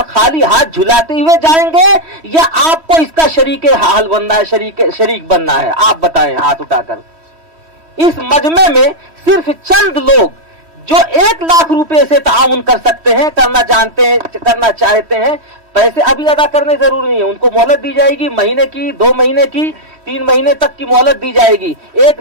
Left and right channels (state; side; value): late; left; 3.1 ms